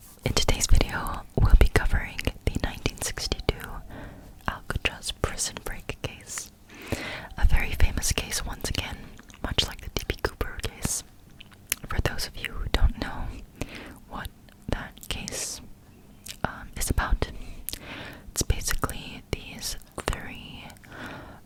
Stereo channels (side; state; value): both; identical; correlation 1.00